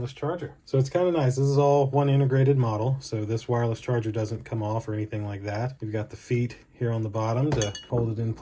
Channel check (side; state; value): both; identical; correlation 1.00